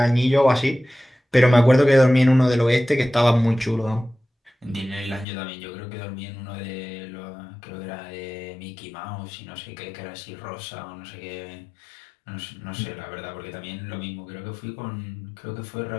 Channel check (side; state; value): right; drops out; at 5.2 s